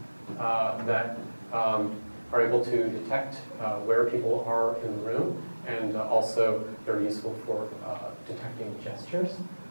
that are able to detect where people are in the room, and also they're useful for detecting gestures.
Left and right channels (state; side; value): inverted; both; correlation -1.00